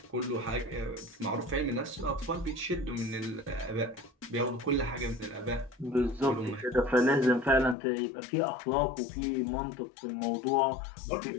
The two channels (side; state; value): right; drops out; at 7.8 s